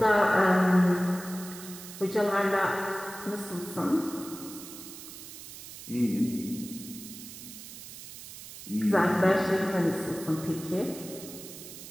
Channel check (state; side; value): noise; right; hiss, 13 dB below the sound